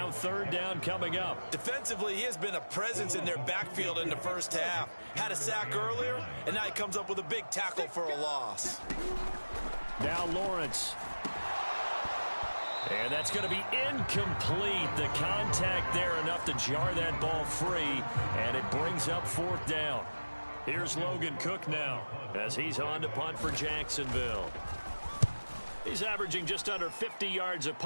third down coming up. Defensively, he has been a presence in their backfield in the first half. Had a sack earlier, and now he comes up with a big tackle for a loss. Now Lawrence. And that's going to be incomplete. The contact there enough to jar that ball free, and it brings up 4th down. Here's Logan Cook now as he's on to punt for Jacksonville. He's averaging just under 50 yards a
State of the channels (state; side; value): inverted; both; correlation -1.00